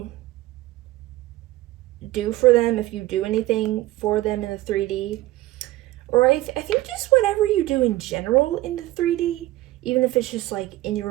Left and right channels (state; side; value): quieter; left; 17.2 dB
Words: do for them, if you do anything for them in the 3D, or I think just whatever you do in general in the 3D, even if it's just like in